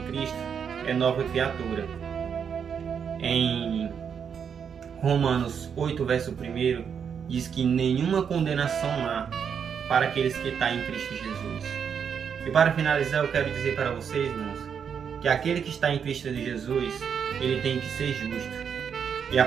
Cristo é nova criatura. Em Romanos 8, verso 1, diz que nenhuma condenação há para aqueles que estão em Cristo Jesus. E para finalizar, eu quero dizer para vocês, irmãos, que aquele que está em Cristo Jesus, ele tem que ser justo. E a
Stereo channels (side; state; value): left; quieter; 7.3 dB